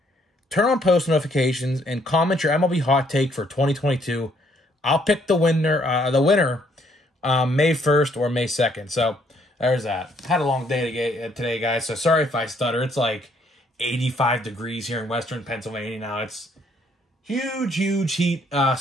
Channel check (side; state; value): both; normal; correlation 0.68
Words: turn on post notifications, and comment your MLB hot take for 2022. I'll pick the winner May 1st or May 2nd. So there's that. Had a long day today, guys, so sorry if I stutter. It's like 85 degrees here in western Pennsylvania now. It's huge heat